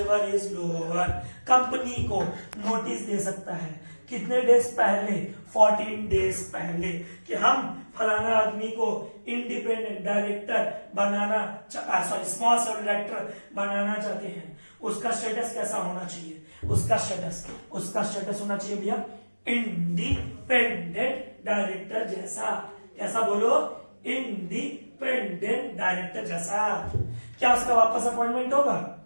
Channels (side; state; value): both; inverted; correlation -1.00